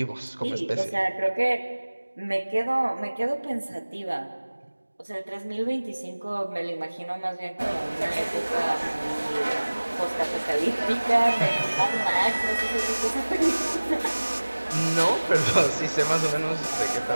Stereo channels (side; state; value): both; inverted; correlation -1.00